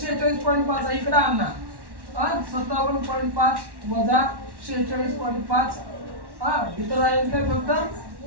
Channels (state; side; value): late; left; 1.1 ms